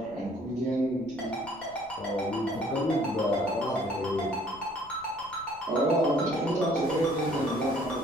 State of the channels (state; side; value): noise; left; rumble, 24 dB below the sound